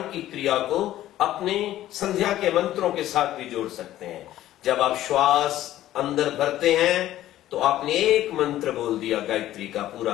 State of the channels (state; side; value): quieter; right; 13.7 dB